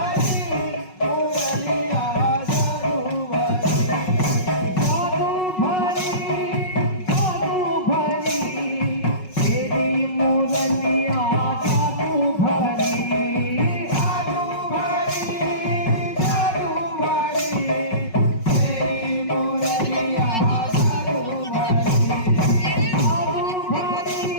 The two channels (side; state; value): right; late; 5.4 ms